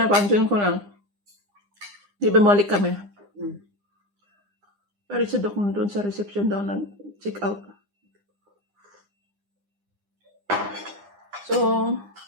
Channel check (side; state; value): left; late; 9.9 ms